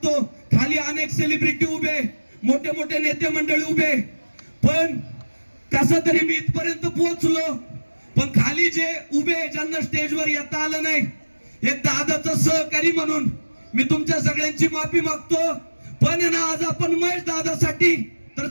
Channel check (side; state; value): both; inverted; correlation -1.00